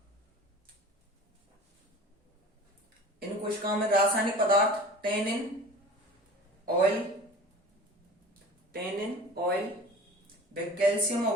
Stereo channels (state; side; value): normal; both; correlation 0.40